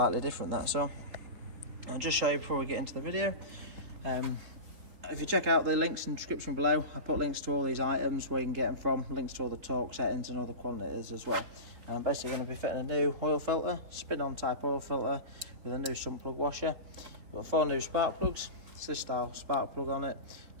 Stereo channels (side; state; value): left; late; 4.0 ms